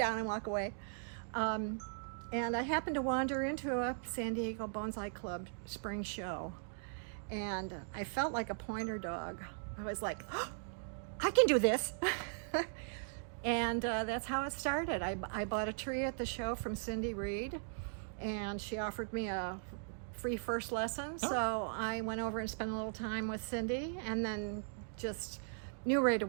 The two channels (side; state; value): left; silent; digital silence